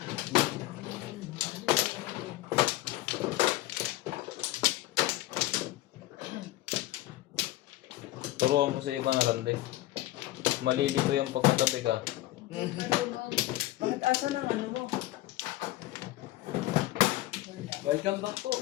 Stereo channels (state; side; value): quieter; right; 16.5 dB